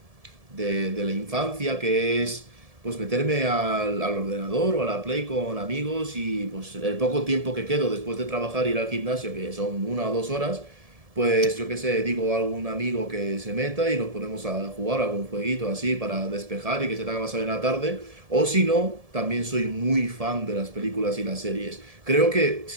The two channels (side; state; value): left; late; 1.7 ms